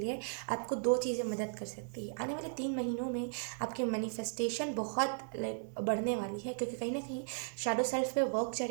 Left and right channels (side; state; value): left; silent; 54 dB below the other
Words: आपको दो चीज़ें मदद कर सकती है। आने वाले 3 महीनों में आपकी मैनिफेस्टेशन बहुत लाइक बढ़ने वाली है, क्योंकि कहीं ना कहीं शैडो सेल्फ पे वर्क